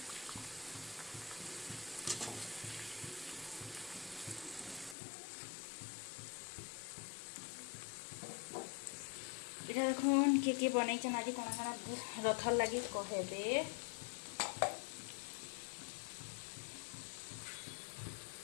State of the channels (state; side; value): drops out; right; at 5.0 s